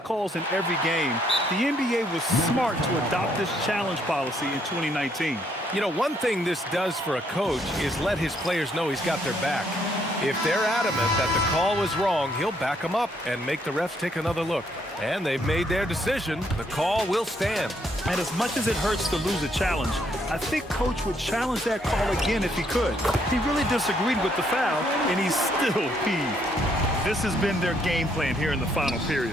in every game, the NBA was smart to adopt this challenge policy in 2019. You know, one thing this does for a coach is let his players know he's got their back. If they're adamant that the call was wrong, he'll back them up and make the refs take another look. And they've made their decision. The call will stand. And as much as it hurts to lose a challenge, I think Coach would challenge that call again if he could. He really disagreed with the foul, and he's still peeved. This has been their game plan here in the final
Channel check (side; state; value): both; normal; correlation 0.71